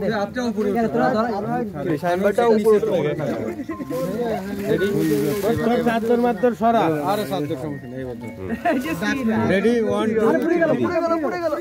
আপটা উপরে সাইনবোর্ডটা উপরে রেডি চাদর মাত্র সরা আরে চাদর সমস্যা নেই বন্ধু রেডি 1 2 পুরো গেল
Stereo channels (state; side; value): identical; both; correlation 1.00